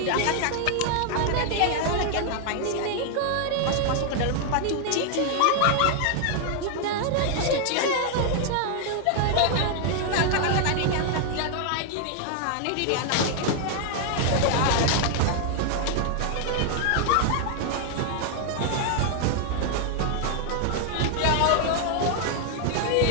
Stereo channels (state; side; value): different; both; correlation 0.00